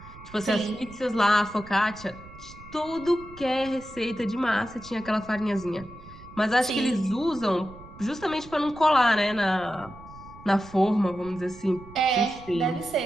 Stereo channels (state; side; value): noise; right; rumble, 19 dB below the sound